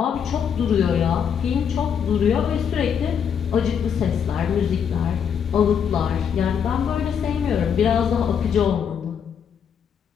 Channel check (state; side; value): quieter; right; 7.7 dB